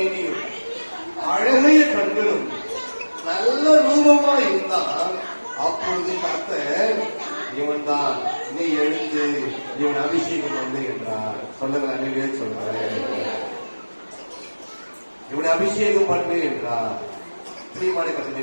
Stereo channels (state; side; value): inverted; both; correlation -1.00